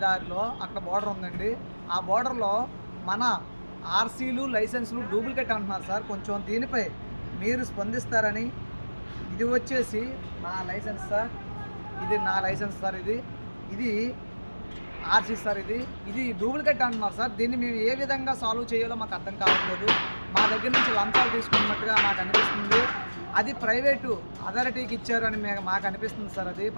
దారిలో అక్కడ బోర్డర్ ఉందండి. ఆ బోర్డర్లో మన ఆర్సీలు లైసెన్సులు డూప్లికేట్ అంటున్నారు సార్. కొంచెం దీనిపై మీరు స్పందిస్తారని. ఇది వచ్చేసి నా లైసెన్స్ సార్, ఇది నా లైసెన్స్ సార్, ఇది ఆర్సీ సార్, ఇది డూప్లికేట్ అంటున్నారు సార్. దీన్ని మేము ఏ విధంగా సాల్వ్ చేయాలో మాకు అర్థం కావట్లేదు. మా దగ్గర నుంచి లంచాలు తీసుకున్నట్టుగా నాకు అనిపిస్తుంది. అది ప్రైవేటు అథారిటీకి ఇచ్చారు అని మాకు అనిపిస్తుంది సార్. అది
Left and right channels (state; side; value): inverted; both; correlation -1.00